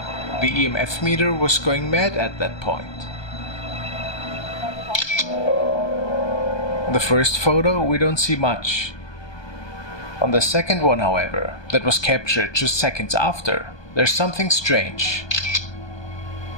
The EMF meter was going mad at that point. On the first photo, we don't see much. On the second one, however, that was captured just seconds after, there's something strange.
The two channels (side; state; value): right; late; 1.2 ms